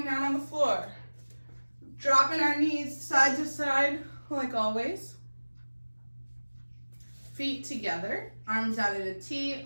down on the floor. Dropping our knees side to side, like always. Feet together, arms out at a T,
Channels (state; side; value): inverted; both; correlation -1.00